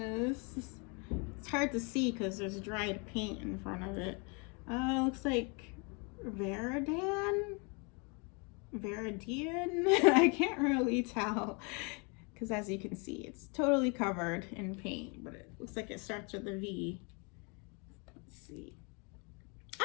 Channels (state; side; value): quieter; right; 33.2 dB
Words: It's hard to see because there's dried paint in front of it. It looks like Viridian? I can't really tell because as you can see, it's totally covered in paint, but it looks like it starts with a V. Let's see.